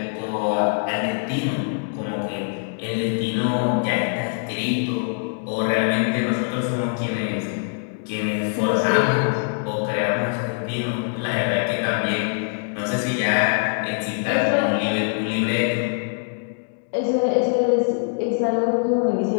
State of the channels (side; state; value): right; silent; digital silence